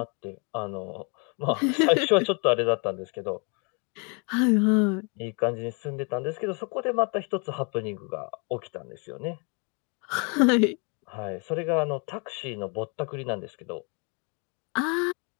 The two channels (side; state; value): right; quieter; 35.1 dB